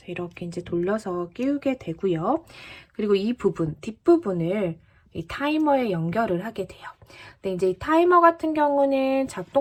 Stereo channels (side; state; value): both; identical; correlation 1.00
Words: 이렇게 이제 돌려서 끼우게 되고요. 그리고 이 부분, 뒷부분을 이 타이머에 연결을 하게 돼요. 근데 이제 이 타이머 같은 경우는